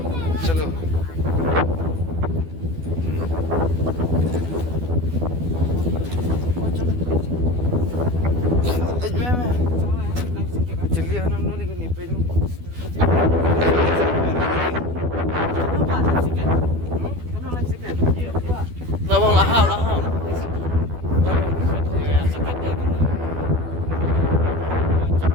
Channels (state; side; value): late; left; 12 ms